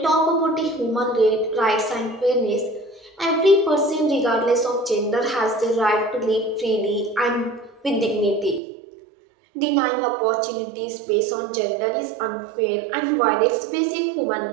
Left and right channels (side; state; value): left; drops out; at 8.6 s